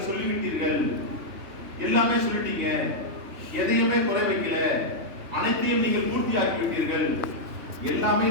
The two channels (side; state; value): left; late; 3.1 ms